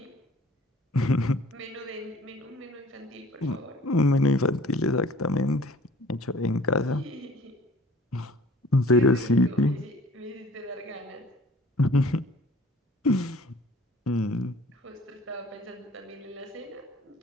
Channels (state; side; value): normal; both; correlation 0.50